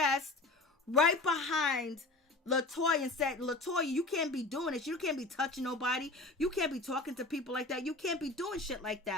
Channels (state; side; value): quieter; right; 3.1 dB